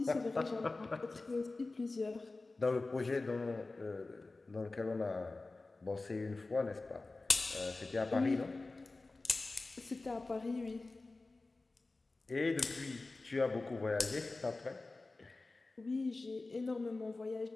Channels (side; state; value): right; quieter; 3.4 dB